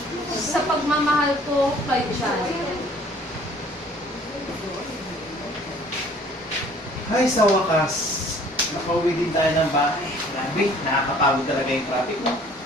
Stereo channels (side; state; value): both; normal; correlation 0.54